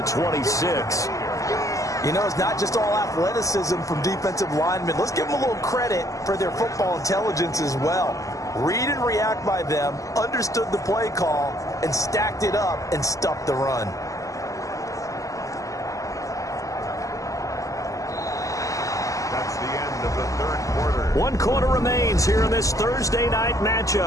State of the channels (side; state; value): right; late; 0.16 ms